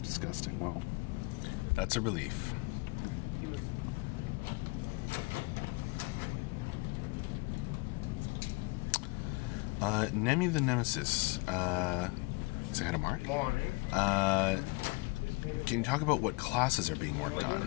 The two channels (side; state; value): right; quieter; 26.4 dB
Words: Well, that's a relief. Nemi the Nemesis. Say hi to Mark. Morning. Can you talk about what classes are being worked